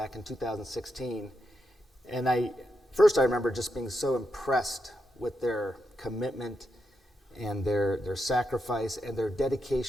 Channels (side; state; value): both; normal; correlation 0.84